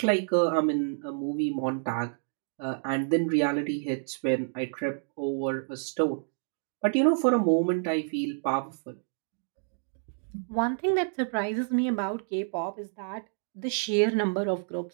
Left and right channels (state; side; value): silent; left; digital silence